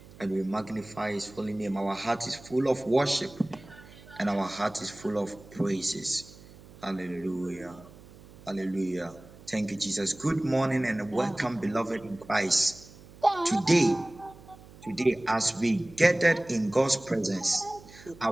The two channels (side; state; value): right; noise; hum, 21 dB below the sound